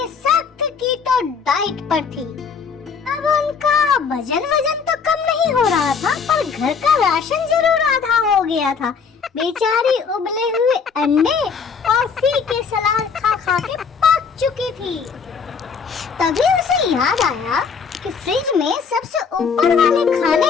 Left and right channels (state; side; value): quieter; right; 5.8 dB